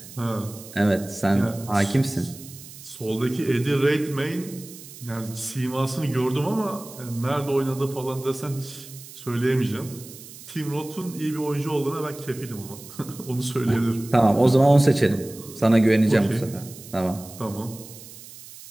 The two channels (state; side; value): noise; right; hiss, 17 dB below the sound